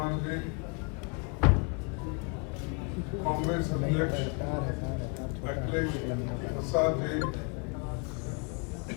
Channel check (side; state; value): right; quieter; 34.2 dB